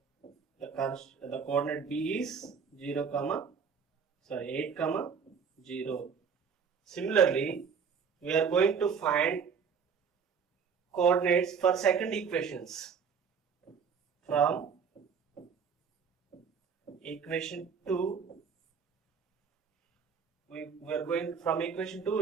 The coordinate b is 8 comma 0. Similarly, we are going to find coordinates for second equations. From equation 2, we are going from equation 2,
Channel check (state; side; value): quieter; left; 6.4 dB